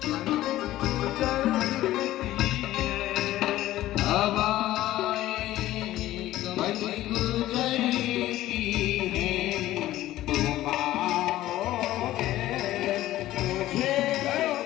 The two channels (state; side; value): quieter; right; 15.0 dB